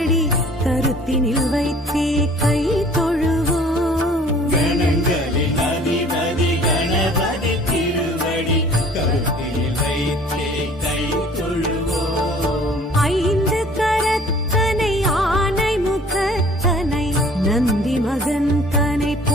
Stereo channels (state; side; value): normal; both; correlation 0.52